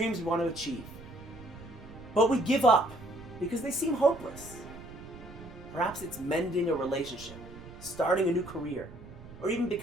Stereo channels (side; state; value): right; noise; rumble, 16 dB below the sound